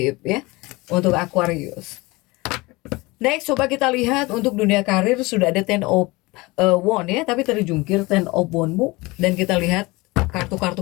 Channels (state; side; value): quieter; right; 22.9 dB